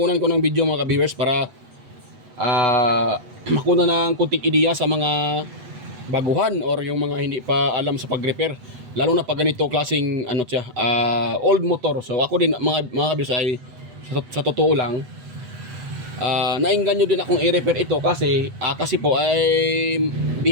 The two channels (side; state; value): left; late; 8.1 ms